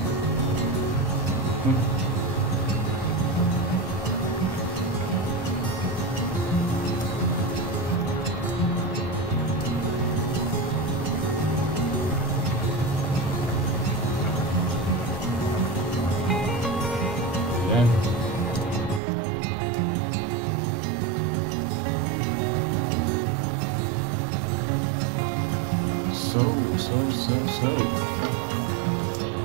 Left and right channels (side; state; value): left; drops out; at 19.0 s